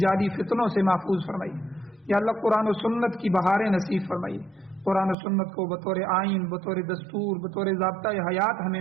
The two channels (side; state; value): left; drops out; at 5.2 s